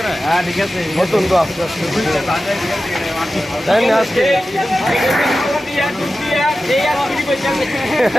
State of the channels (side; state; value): both; normal; correlation 0.93